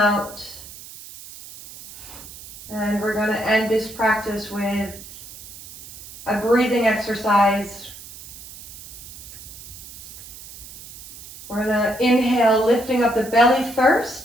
And we're going to end this practice with a breathing exercise. We're going to inhale, lifting up the belly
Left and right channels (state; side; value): noise; right; hiss, 16 dB below the sound